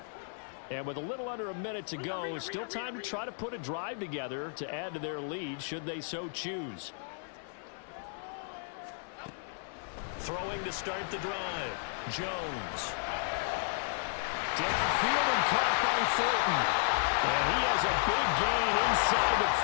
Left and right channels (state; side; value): silent; right; 56 dB below the other